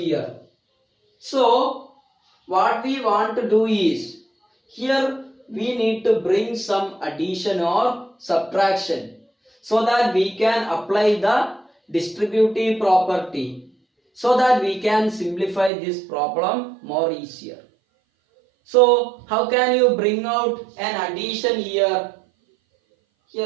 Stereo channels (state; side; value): drops out; left; at 15.7 s